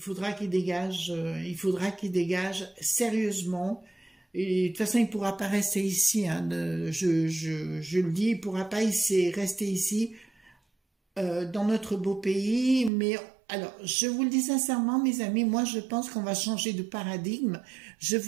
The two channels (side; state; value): left; drops out; at 12.9 s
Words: qu'il dégage sérieusement. Et de toute façon, il ne pourra pas rester ici. Hein, je le dis, il ne pourra pas rester ici dans notre beau pays. Mais alors, je vous le dis sincèrement, mes amis, moi, je pense qu'on va changer de paradigme. Je